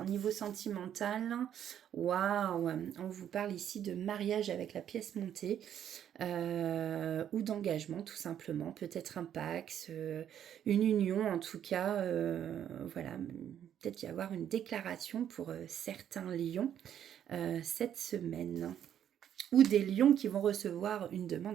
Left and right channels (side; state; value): left; quieter; 9.9 dB